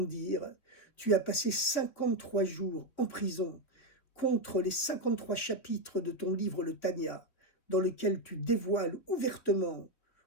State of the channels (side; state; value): right; late; 3.3 ms